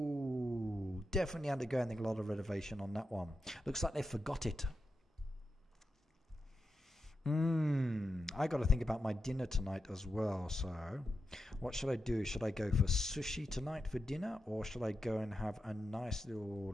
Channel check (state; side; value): normal; both; correlation 0.88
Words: Definitely undergoing a lot of renovation on that one. Looks like they forgot it. I got to think about my dinner tonight as well. So, what should I do? Should I go for sushi tonight for dinner, or should I go and have a nice little